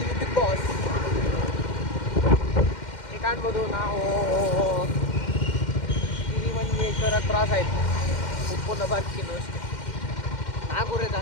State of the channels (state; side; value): late; right; 2.1 ms